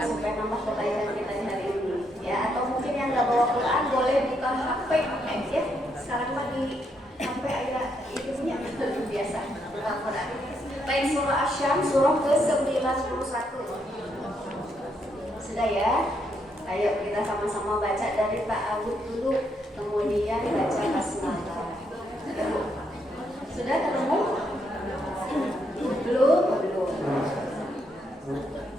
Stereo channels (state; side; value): normal; both; correlation 0.76